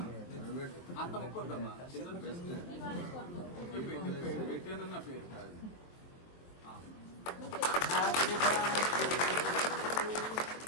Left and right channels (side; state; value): right; late; 23 ms